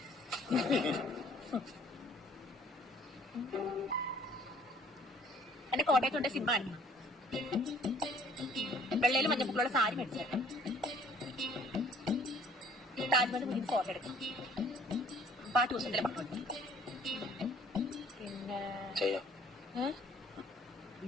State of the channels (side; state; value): both; normal; correlation 0.57